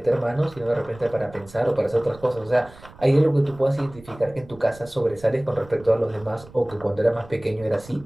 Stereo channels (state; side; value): noise; right; rumble, 21 dB below the sound